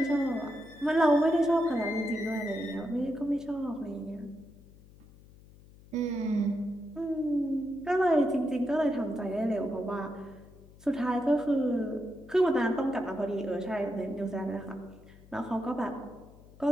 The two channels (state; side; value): noise; left; hum, 23 dB below the sound